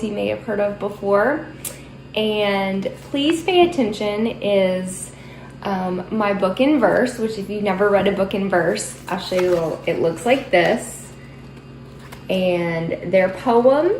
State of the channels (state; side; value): identical; both; correlation 1.00